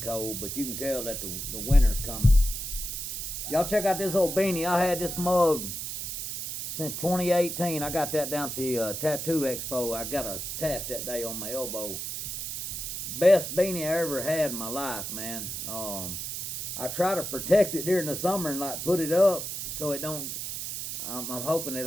cold, but you can tell that the winter's coming. Y'all check out this old beanie. I had this mug since 2018. I got that down at the Tattoo Expo. I got a tat that day on my elbow. Best beanie I ever had in my life, man. I try to protect it during the summer and like put it up so it don't. I'm hoping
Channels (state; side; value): noise; right; hiss, 5 dB below the sound